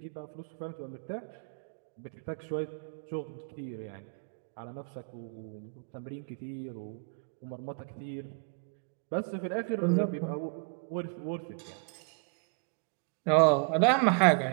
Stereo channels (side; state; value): left; quieter; 39.9 dB